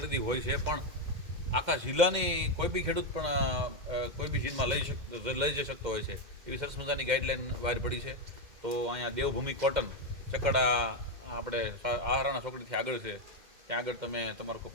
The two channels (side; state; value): left; late; 2.0 ms